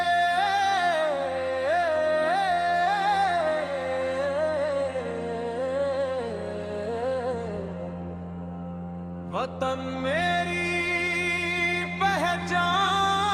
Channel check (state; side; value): identical; both; correlation 1.00